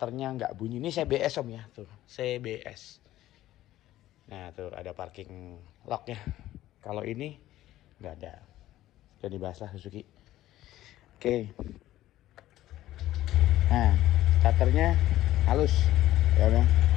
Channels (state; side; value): quieter; right; 14.5 dB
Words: nggak bunyi. Ini CBS Om ya, tuh CBS. Nah tuh ada parking lock-nya. Kalau ini nggak ada. Jadi dibahas lah Suzuki. Oke. Nah starternya halus, ya Bang.